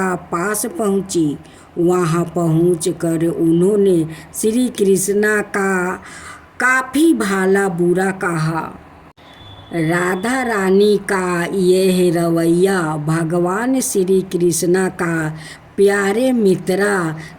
पास पहुंची। वहां पहुंचकर उन्होंने श्री कृष्णा का काफ़ी भला बुरा कहा। राधा रानी का यह रवैया भगवान श्री कृष्णा का प्यारे मित्रा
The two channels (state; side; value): identical; both; correlation 1.00